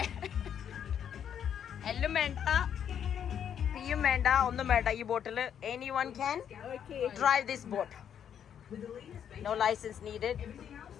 എല്ലാം വേണ്ട, പിയും വേണ്ട, ഒന്നും വേണ്ട ഈ ബോട്ടില്. Anyone can drive this boat. No license needed.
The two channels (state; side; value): quieter; right; 8.8 dB